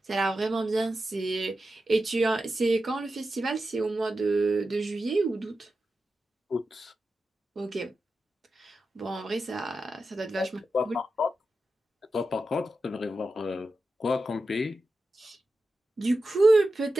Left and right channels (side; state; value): both; normal; correlation 0.91